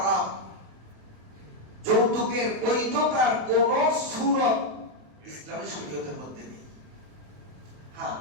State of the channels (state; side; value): late; left; 27 ms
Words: যৌতুকের বৈধতার কোন সূরত ইসলামী শরীয়তের মধ্যে নেই। হ্যাঁ,